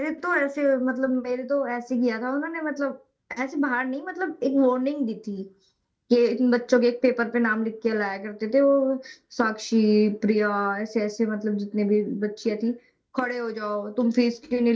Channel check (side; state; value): both; identical; correlation 1.00